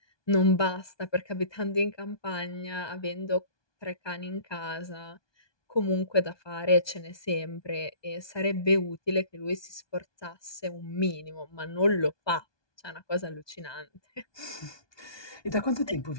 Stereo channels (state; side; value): late; right; 1.2 ms